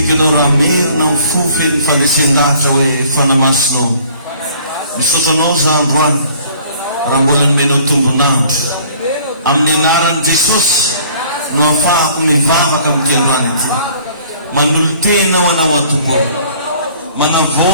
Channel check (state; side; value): inverted; both; correlation -0.55